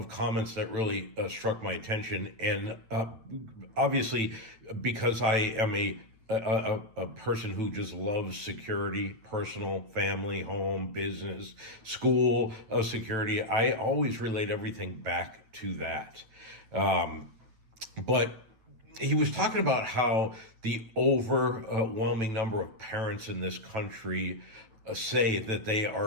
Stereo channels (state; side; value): late; left; 9.0 ms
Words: comments that really struck my attention, and obviously, because I am a person who just loves security, personal, family, home, business, school security. I always relate everything back to that. But he was talking about how the overwhelming number of parents in this country say that they